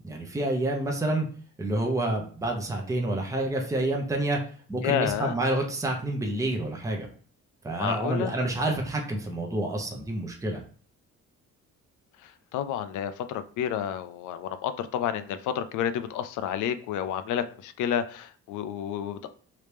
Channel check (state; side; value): normal; both; correlation 0.36